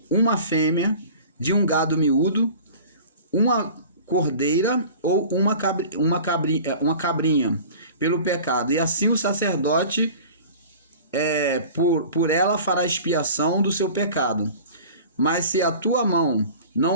uma fêmea de um gado miúdo, uma cordeira ou uma cabrinha pelo pecado, e assim o sacerdote por ela fará expiação do seu pecado. Mas se a tua mão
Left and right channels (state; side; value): inverted; both; correlation -0.42